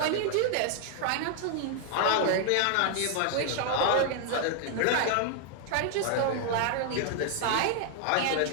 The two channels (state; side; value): different; both; correlation 0.00